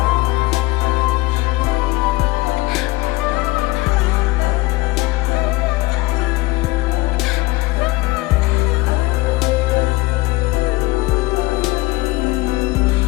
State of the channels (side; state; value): right; quieter; 20.5 dB